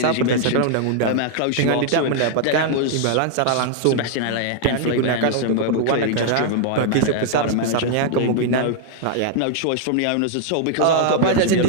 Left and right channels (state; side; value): different; both; correlation 0.00